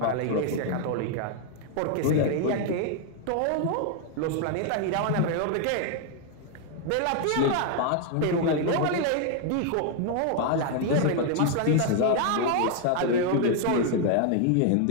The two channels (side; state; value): both; different; correlation 0.00